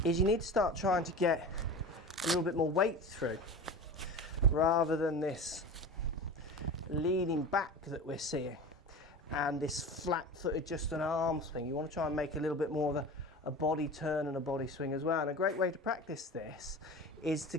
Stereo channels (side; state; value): both; normal; correlation 0.32